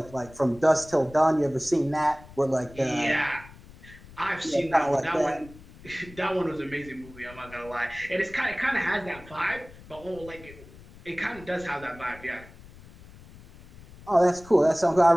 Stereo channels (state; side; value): noise; left; rumble, 20 dB below the sound